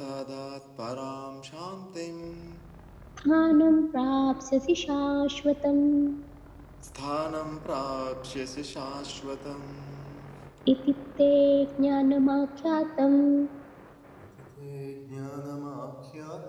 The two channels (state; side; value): identical; both; correlation 1.00